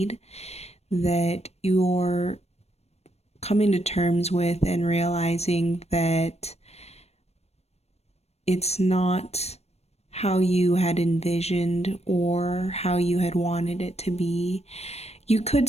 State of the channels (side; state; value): right; late; 0.31 ms